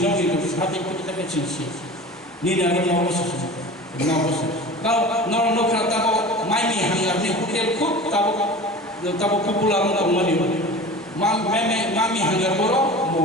साथे कतका चिंसि निनानि नवस गाव नखरा ताबो माइनि हांगारनि होटेल खुब ताबो पपुलार दंमोन मामी हांगार बरो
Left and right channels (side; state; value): both; normal; correlation 0.36